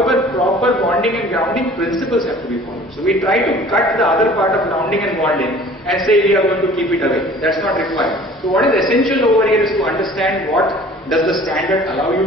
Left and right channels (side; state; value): both; normal; correlation 0.48